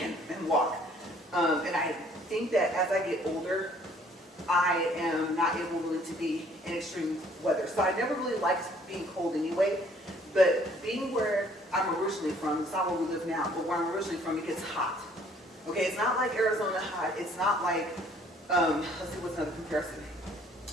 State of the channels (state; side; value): normal; both; correlation 0.59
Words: walk. And I think that as I get older, I am not able really to be in extreme weather. So I never really liked being cold anyway, but being where I'm originally from, it's not where we live now, but where I'm originally from, it gets hot. Okay, it's not like Arizona hot. It's not like, let's see what's another comparison.